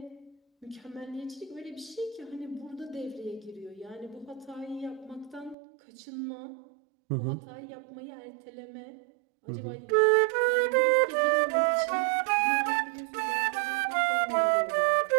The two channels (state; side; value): drops out; left; at 5.6 s